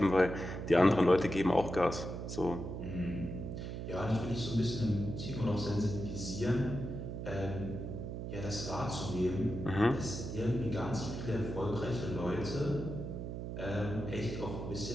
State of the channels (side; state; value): right; noise; hum, 6 dB below the sound